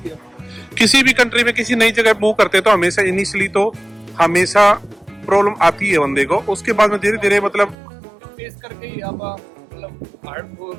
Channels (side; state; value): left; drops out; at 7.8 s